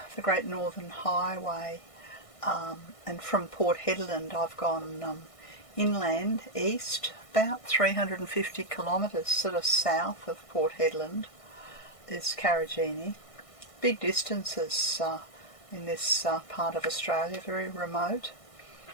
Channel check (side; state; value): right; late; 1.6 ms